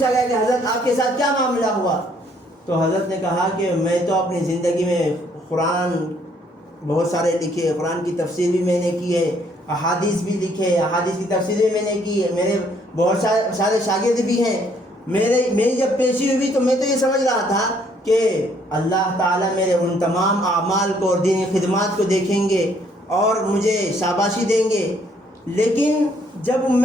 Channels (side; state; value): both; normal; correlation 0.66